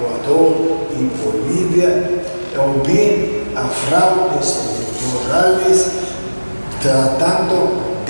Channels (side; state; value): both; inverted; correlation -1.00